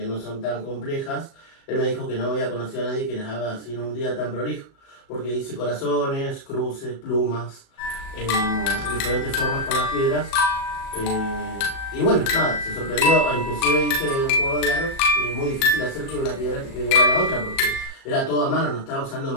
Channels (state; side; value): late; right; 37 ms